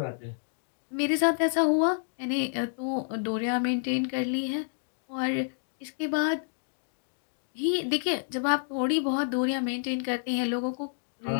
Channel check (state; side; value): silent; right; digital silence